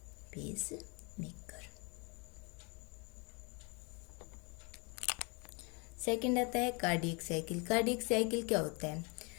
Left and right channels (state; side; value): quieter; right; 31.8 dB